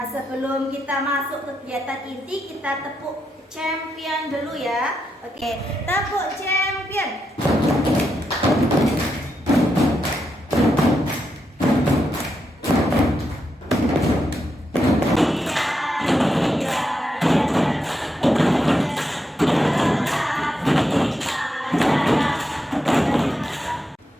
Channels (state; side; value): normal; both; correlation 0.83